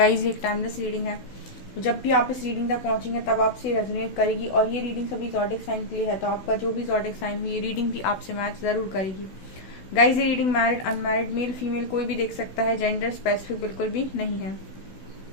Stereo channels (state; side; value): late; right; 16 ms